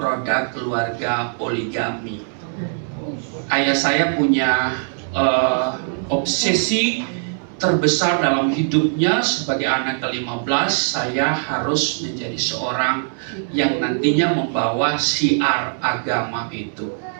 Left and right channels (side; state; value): left; silent; 65 dB below the other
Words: keluarga poligami. Ayah saya punya obsesi terbesar dalam hidupnya sebagai anak ke-15. Saya harus menjadi seorang yang nantinya membawa syiar agama itu.